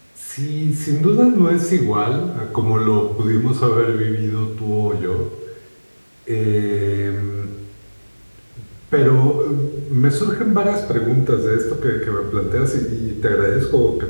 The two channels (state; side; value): inverted; both; correlation -1.00